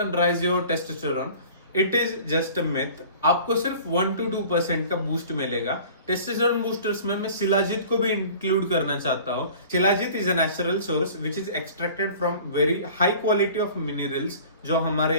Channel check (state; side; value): inverted; both; correlation -0.45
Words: raise your testosterone, it is just a myth. आपको सिर्फ 1 to 2% का बूस्ट मिलेगा। टेस्टोस्टेरोन बूस्टर्स में मैं शिलाजीत को भी इंक्लूड करना चाहता हूँ। Shilajit is a natural source which is extracted from very high quality of minerals, जो हमारे